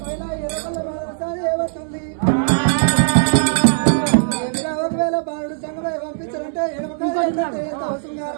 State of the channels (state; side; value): silent; left; digital silence